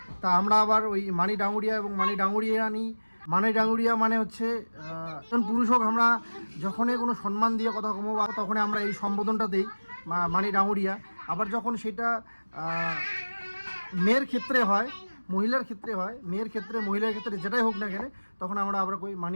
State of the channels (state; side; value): inverted; both; correlation -1.00